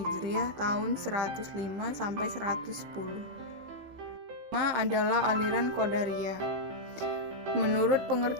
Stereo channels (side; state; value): left; late; 15 ms